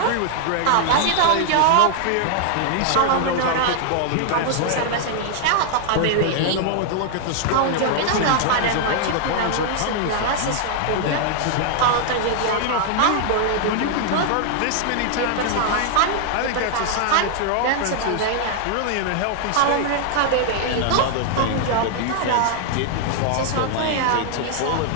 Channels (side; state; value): both; different; correlation 0.00